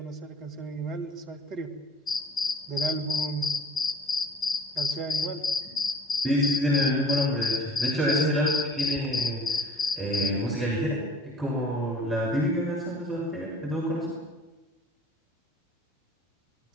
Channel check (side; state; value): both; normal; correlation 0.48